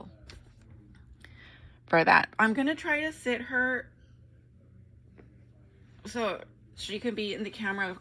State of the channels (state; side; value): identical; both; correlation 1.00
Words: for that. I'm gonna try to sit her so she can be in the camera,